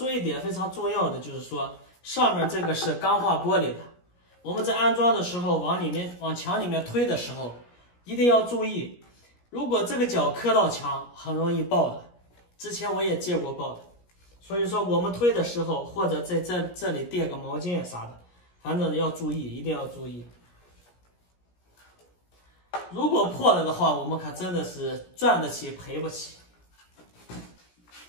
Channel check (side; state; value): right; late; 17 ms